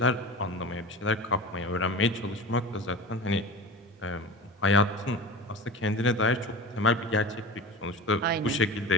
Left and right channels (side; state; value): both; normal; correlation 0.33